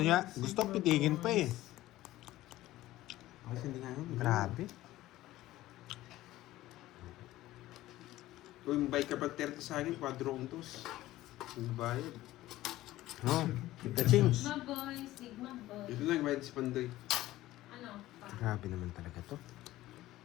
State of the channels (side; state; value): right; quieter; 16.0 dB